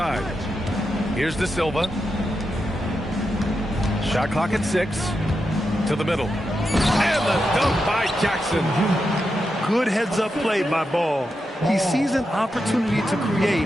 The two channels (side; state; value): both; normal; correlation 0.87